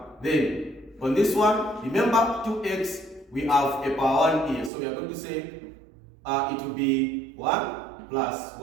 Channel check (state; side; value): drops out; left; at 4.7 s